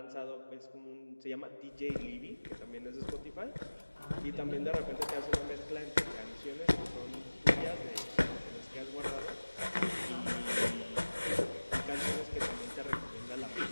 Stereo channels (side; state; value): both; inverted; correlation -1.00